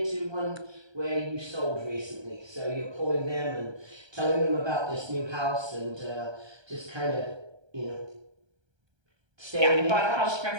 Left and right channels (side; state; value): left; late; 1.3 ms